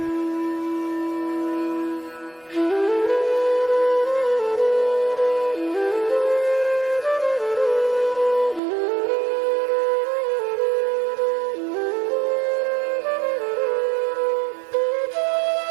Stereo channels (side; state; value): left; drops out; at 8.6 s